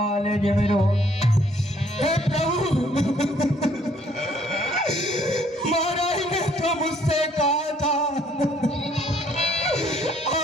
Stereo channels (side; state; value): both; normal; correlation 0.63